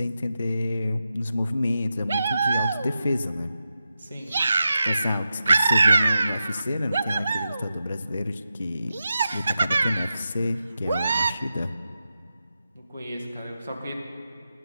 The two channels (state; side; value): inverted; both; correlation -0.90